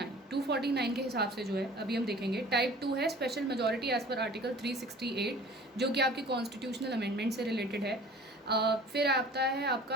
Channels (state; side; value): normal; both; correlation 0.46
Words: के हिसाब से जो है अभी हम देखेंगे। टाइप 2 है special majority as per article 368 जो कि आपकी कॉन्स्टिट्यूशनल अमेंडमेंट से रिलेटेड है। फिर आता है